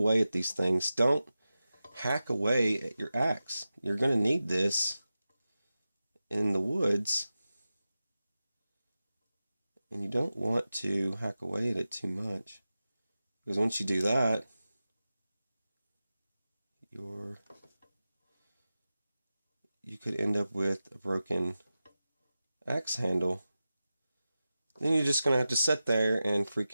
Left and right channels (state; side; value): inverted; both; correlation -0.94